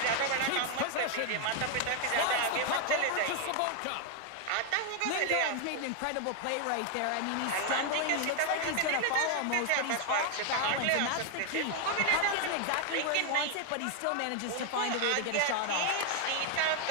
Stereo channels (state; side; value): different; both; correlation 0.00